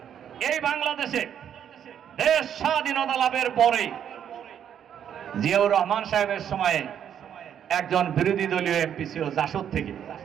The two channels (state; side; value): quieter; left; 9.1 dB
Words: এই বাংলাদেশে দেশ স্বাধীনতা লাভের পরে জিয়াউর রহমান সাহেবের সময়ে একজন বিরোধী দলীয় এমপি ছিল জাসদ থেকে,